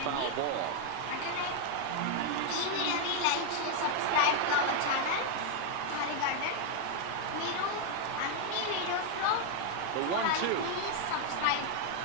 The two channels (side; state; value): both; different; correlation 0.00